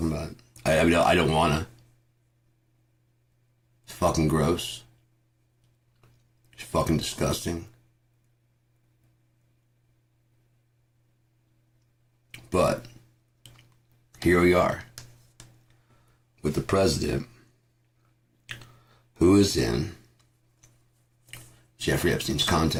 about it. I mean, I don't wanna. It's fucking gross. It's fucking disgusting. But, here we are. With the president, who is in Jeffrey Epstein's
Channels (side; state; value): both; identical; correlation 1.00